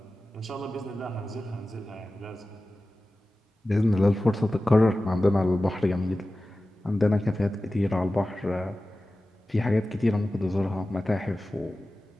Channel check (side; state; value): both; normal; correlation 0.95